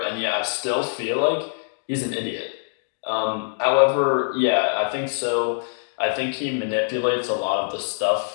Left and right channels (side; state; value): right; silent; digital silence